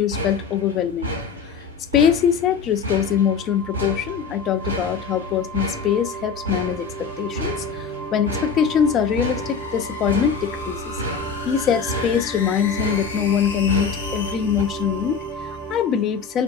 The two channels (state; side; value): quieter; right; 6.3 dB